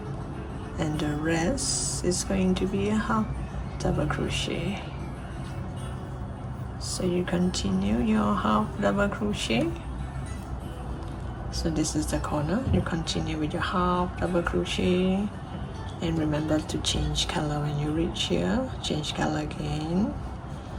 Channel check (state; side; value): identical; both; correlation 1.00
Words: and the rest is going to be a half double crochet. So you continue your half double crochet. So this is the corner. You continue with your half double crochet, and remember to change color when you reach here. Change color again,